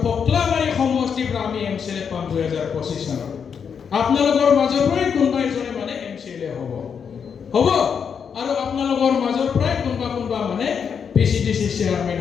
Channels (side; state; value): right; quieter; 6.9 dB